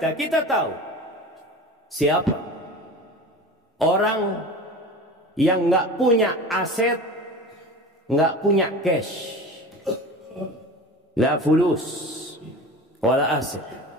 kita tahu siapa? Orang yang nggak punya aset, nggak punya cash, la fulus, wala aset,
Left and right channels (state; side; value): normal; both; correlation 0.34